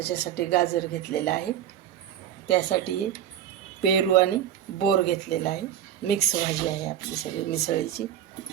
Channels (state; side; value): quieter; left; 10.3 dB